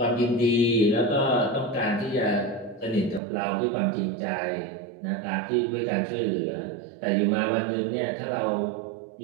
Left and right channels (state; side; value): drops out; left; at 3.2 s